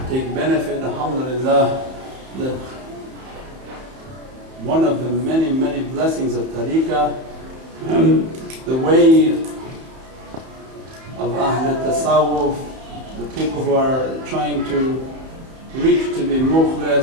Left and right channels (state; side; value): late; left; 31 ms